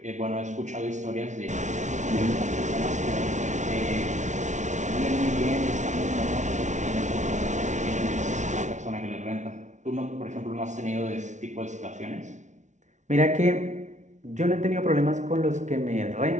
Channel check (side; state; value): left; late; 0.35 ms